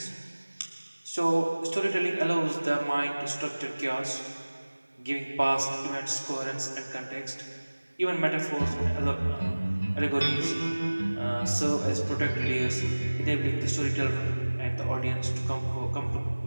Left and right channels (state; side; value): inverted; both; correlation -1.00